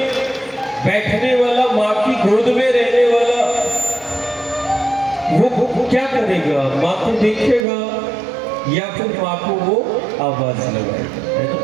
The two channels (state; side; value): drops out; left; at 7.7 s